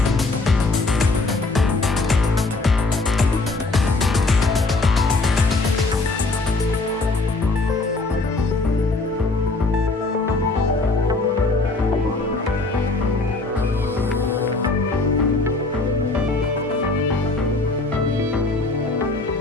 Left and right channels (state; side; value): quieter; right; 3.4 dB